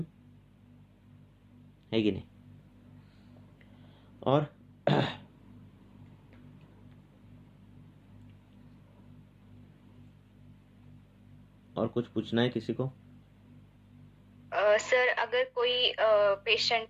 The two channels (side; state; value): both; identical; correlation 1.00